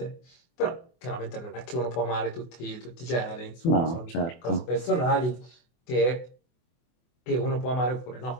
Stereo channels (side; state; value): right; late; 24 ms